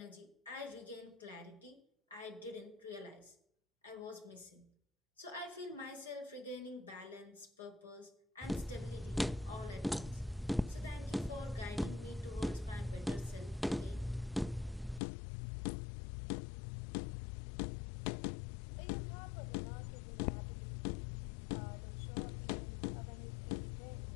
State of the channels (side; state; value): right; drops out; at 15.0 s